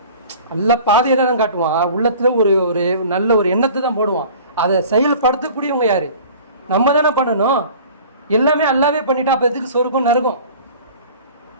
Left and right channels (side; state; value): both; inverted; correlation -0.44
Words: அல்லாஹ் பாதையை தான் காட்டுவான், உள்ளத்தில் ஒரு நல்ல ஒரு எண்ணத்தை தான் போடுவான். அதை செயல்படுத்தக்கூடியவங்க யாரு? நம்ம தானே பண்ணணும். எல்லாமே அல்லாவே பண்ணிட்டா அப்போ எதுக்கு சொர்க்கம் நரகம்?